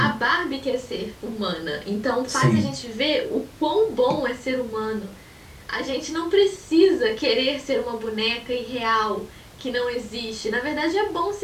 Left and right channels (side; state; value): both; identical; correlation 1.00